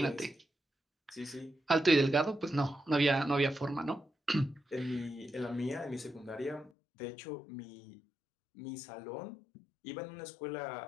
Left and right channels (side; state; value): right; drops out; at 6.7 s